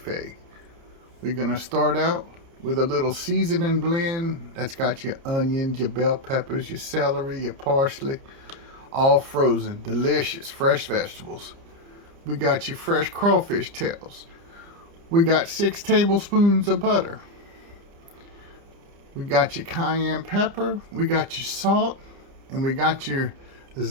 We're going to start out with a little seasoning blend that's got your onions, your bell peppers, your celery, your parsley, all frozen, delicious, fresh vegetables. We got your fresh crawfish tails. We got 6 tablespoons of butter. We got your cayenne pepper. We got your salt. And we got your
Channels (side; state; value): left; late; 30 ms